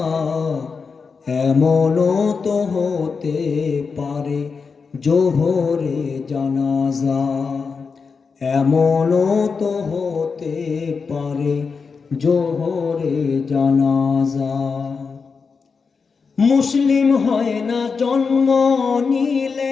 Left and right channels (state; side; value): quieter; right; 5.2 dB